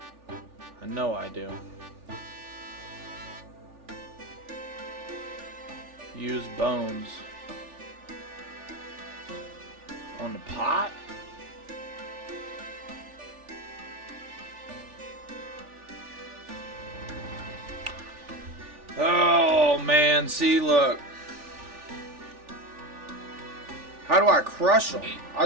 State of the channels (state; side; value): late; left; 3.4 ms